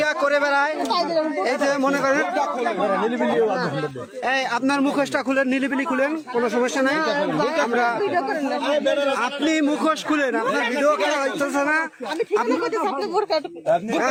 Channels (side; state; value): both; identical; correlation 1.00